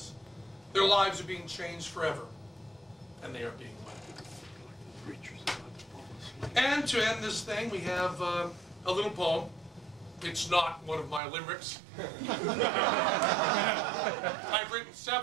Their lives are being changed forever, and they are being led. And to end this thing, we have a little poem. It's not one of my limericks. I've written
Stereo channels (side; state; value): left; drops out; at 11.2 s